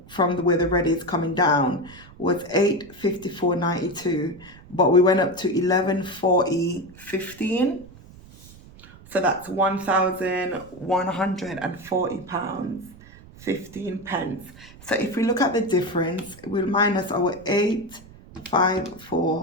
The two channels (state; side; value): noise; right; rumble, 21 dB below the sound